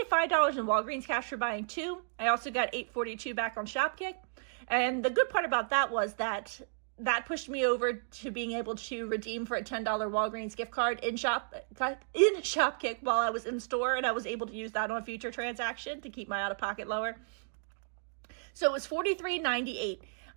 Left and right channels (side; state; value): left; silent; digital silence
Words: $5 in Walgreens cash for buying 2. I also got $8.42 back on Shopkick. And the good part about that was that pushed me over to being able to redeem for a $10 Walgreens gift card in Shopkick while I was in store. And I was able to use that on a future transaction to keep my out-of-pocket lower. So it was $43.98.